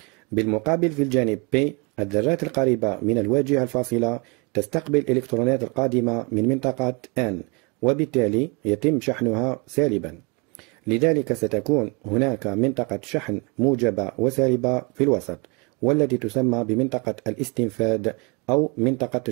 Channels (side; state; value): left; quieter; 30.2 dB